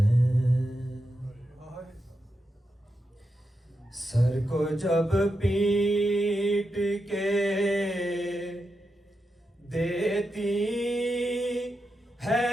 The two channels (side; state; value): both; normal; correlation 0.87